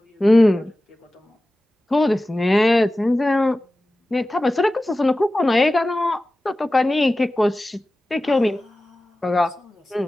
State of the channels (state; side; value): normal; both; correlation 0.96